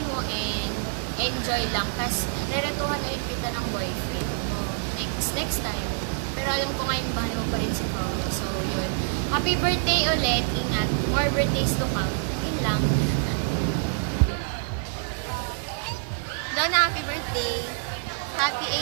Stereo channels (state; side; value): silent; left; 61 dB below the other